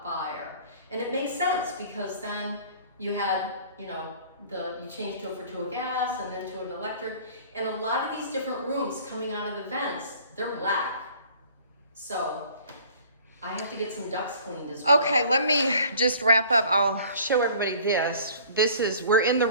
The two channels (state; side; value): inverted; both; correlation -0.50